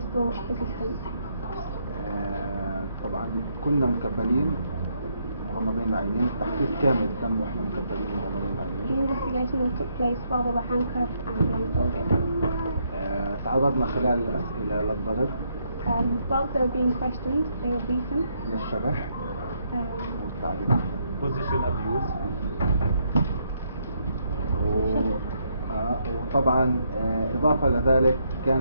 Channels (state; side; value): inverted; both; correlation -0.74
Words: still persistent. طبعا كنا مكبلين مغمضين العينين. التحقيق كامل تم واحنا مكبلين مغمضين The العينين. interrogation took place while they were handcuffed and blindfolded. تعرضنا خلال الأسئلة للضرب، Whilst they were being questioned, they were beaten. للشبح والتعذيب. position abuse. وطبعا إضافة لذلك